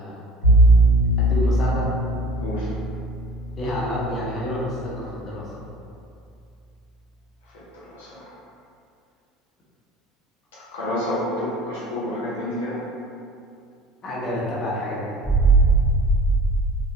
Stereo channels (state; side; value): normal; both; correlation 0.45